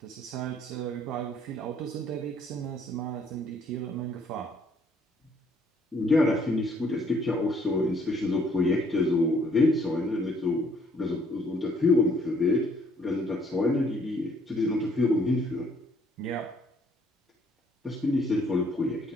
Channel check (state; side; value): normal; both; correlation 0.64